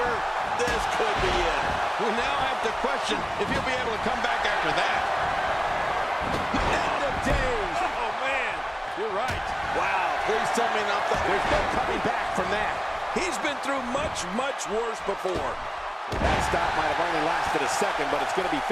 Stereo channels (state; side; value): identical; both; correlation 1.00